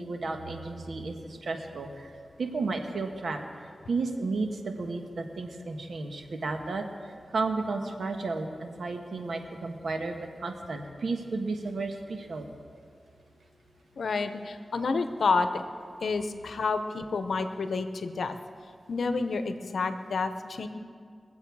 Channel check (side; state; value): both; normal; correlation 0.87